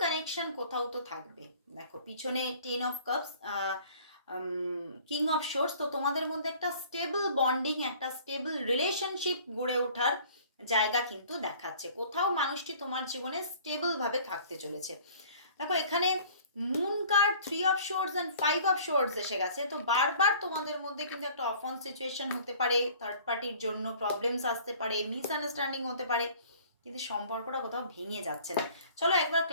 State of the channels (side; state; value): both; inverted; correlation -0.50